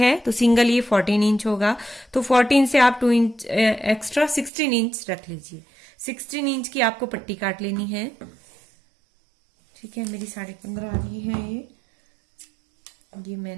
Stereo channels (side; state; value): left; drops out; at 4.5 s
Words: तो सिंगल ये 14 इंच होगा। तो 14 से आप 2 इंच एक्स्ट्रा 16 इंच रख लीजिए। 16 इंच की आपको पट्टी काट लेनी है। ठीक है, मेरी 15.5 आ रही है ये